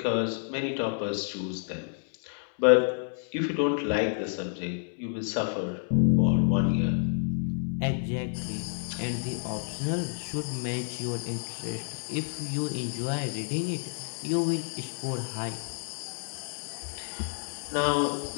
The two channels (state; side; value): silent; right; 58 dB below the other